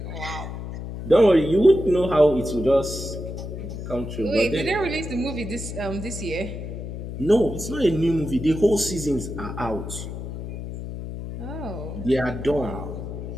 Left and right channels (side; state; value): left; noise; hum, 8 dB below the sound